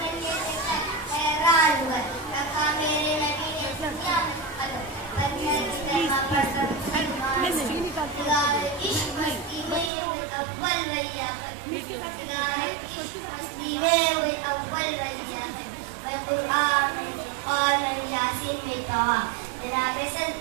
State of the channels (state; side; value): drops out; left; at 9.9 s